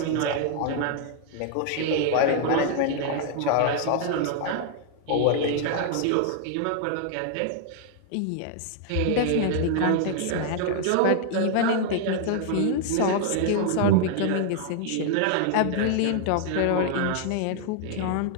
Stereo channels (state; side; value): different; both; correlation 0.00